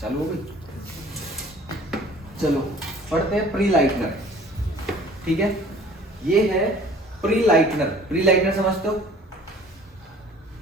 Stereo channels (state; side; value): normal; both; correlation 0.50